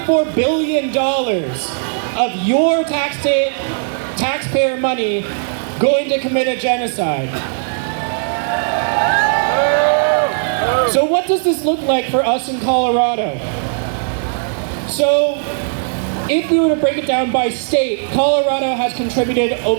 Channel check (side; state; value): left; silent; digital silence